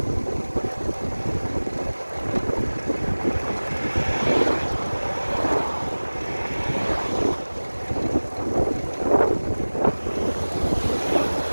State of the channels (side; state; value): both; inverted; correlation -1.00